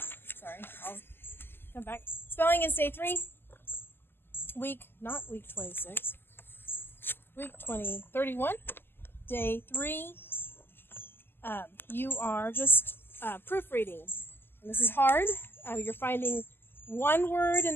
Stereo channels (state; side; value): late; right; 0.10 ms